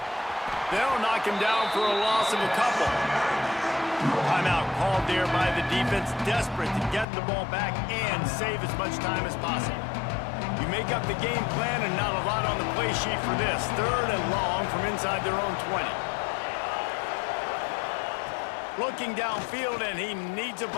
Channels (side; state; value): right; drops out; at 7.1 s